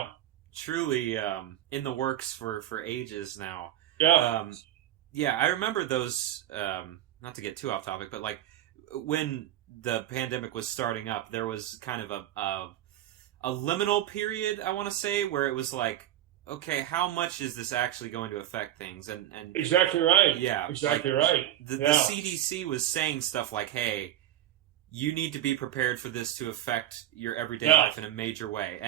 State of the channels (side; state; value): left; quieter; 12.5 dB